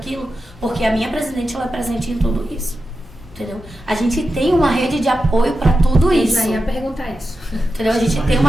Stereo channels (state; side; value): normal; both; correlation 0.91